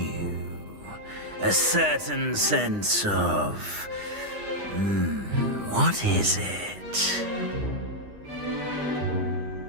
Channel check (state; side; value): late; left; 9.8 ms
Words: A certain sense of... what is it?